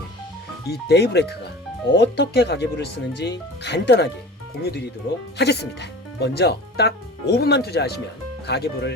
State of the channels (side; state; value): both; normal; correlation 0.38